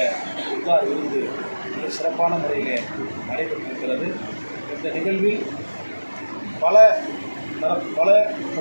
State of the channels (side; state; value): both; inverted; correlation -1.00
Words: இஃப்தார் விருந்து மிக சிறப்பான முறையிலே நடைபெற்றிருக்கிறது. இந்த நிகழ்வில் பல